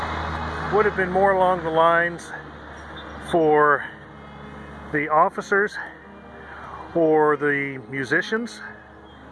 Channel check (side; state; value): both; identical; correlation 1.00